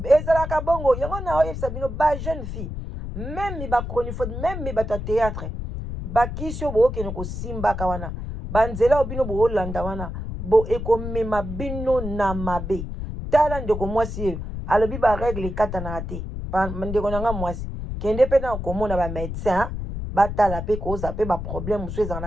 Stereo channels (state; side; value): noise; left; rumble, 6 dB below the sound